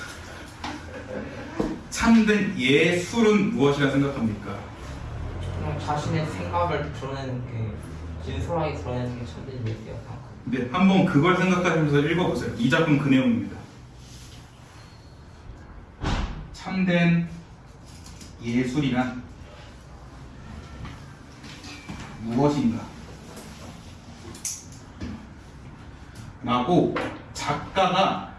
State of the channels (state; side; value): identical; both; correlation 1.00